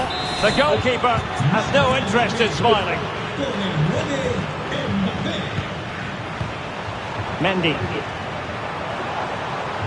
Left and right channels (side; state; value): both; identical; correlation 1.00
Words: The goalkeeper has no interest in smiling. Mendy.